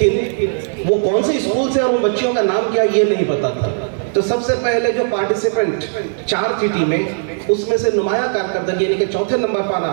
वो कौन से स्कूल से और उन बच्चियों का नाम क्या ये नहीं पता था। तो सबसे पहले जो पार्टिसिपेंट 4 थी टीमें, उसमें से नुमाया कारकर्दगी यानी कि चौथे नंबर पर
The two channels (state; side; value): silent; left; digital silence